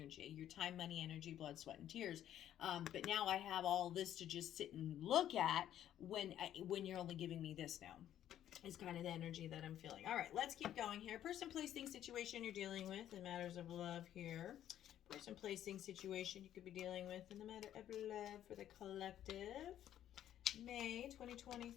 your time, money, energy, blood, sweat, and tears. But now I have all this to just sit and look at when you're only giving me this now. Is kind of the energy that I'm feeling. All right, let's keep going here. Person, place, thing, situation you're dealing with in matters of love here. Person, place, thing, situation you could be dealing with in the matter of love for the collective. May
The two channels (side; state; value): right; quieter; 11.3 dB